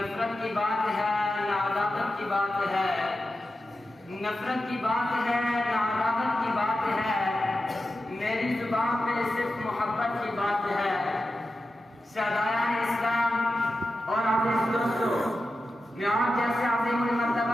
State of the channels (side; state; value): both; normal; correlation 0.91